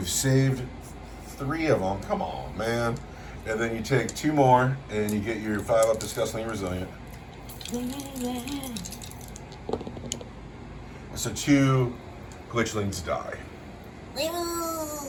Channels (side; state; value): both; identical; correlation 1.00